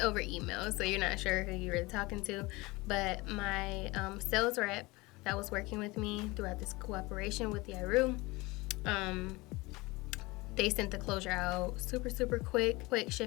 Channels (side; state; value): right; quieter; 22.7 dB